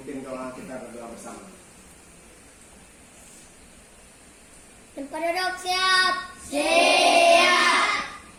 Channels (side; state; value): both; identical; correlation 1.00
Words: doa kita berdoa bersama. Penduduk siap. Siap.